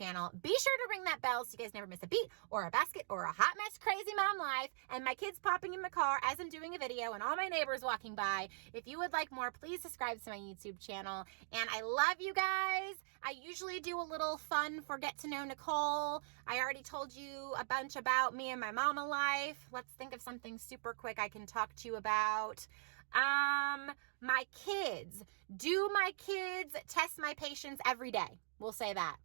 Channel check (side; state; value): left; silent; digital silence